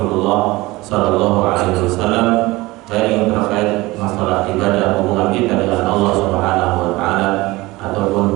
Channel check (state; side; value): quieter; left; 20.5 dB